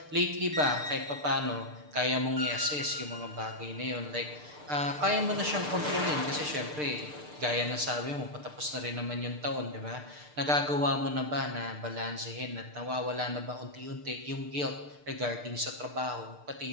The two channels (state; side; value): late; left; 6.7 ms